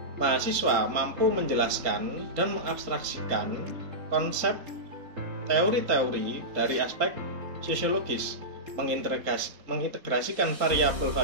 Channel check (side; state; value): left; late; 3.8 ms